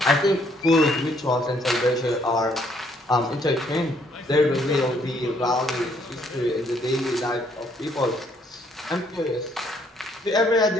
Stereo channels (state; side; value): normal; both; correlation 0.67